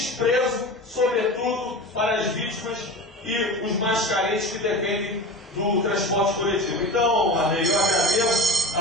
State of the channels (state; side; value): normal; both; correlation 0.31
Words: sobretudo para as vítimas e os mais carentes que dependem do transporte coletivo. Então, Arnei, eu agradeço